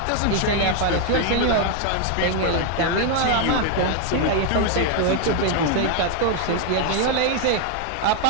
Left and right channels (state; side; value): different; both; correlation 0.00